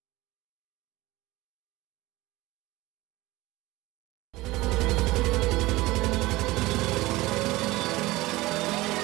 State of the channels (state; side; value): quieter; left; 19.7 dB